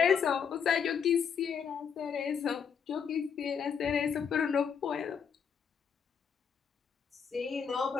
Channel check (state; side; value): quieter; right; 7.0 dB